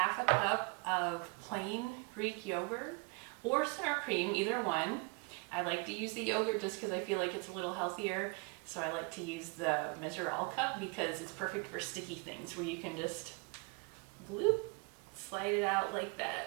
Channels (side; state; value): left; quieter; 32.1 dB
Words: a cup of plain Greek yogurt or sour cream, either one. I like to use the yogurt just because I feel like it's a little healthier. So I like to use the Measure All cup because it's perfect for sticky things where you can just bloop, slide it out like that.